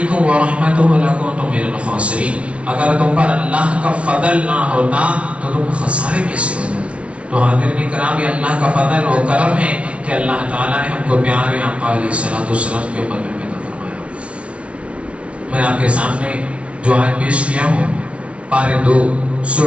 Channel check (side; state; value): left; late; 0.059 ms